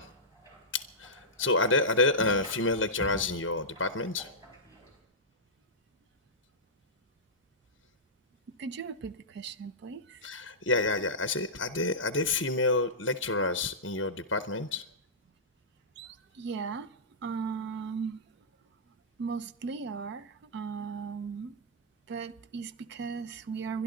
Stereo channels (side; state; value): both; normal; correlation -0.14